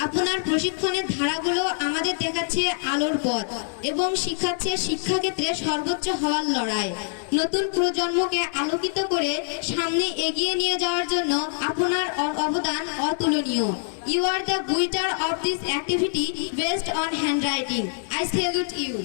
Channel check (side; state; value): right; silent; 62 dB below the other